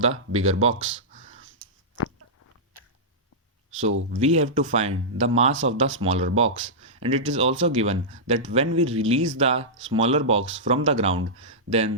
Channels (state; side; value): normal; both; correlation -0.13